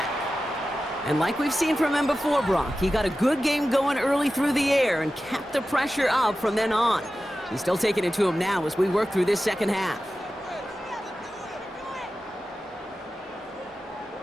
And like we've seen from him before, Brock, he got a good game going early through the air and kept the pressure up from then on. He's still taking it to him now as we work through this second half.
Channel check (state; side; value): normal; both; correlation 0.94